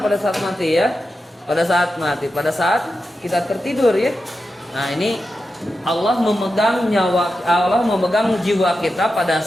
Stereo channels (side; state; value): both; normal; correlation 0.90